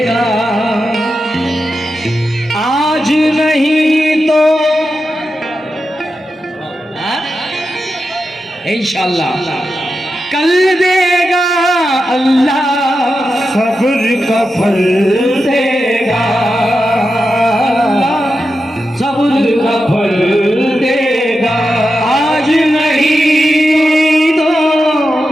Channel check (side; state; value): both; normal; correlation 0.89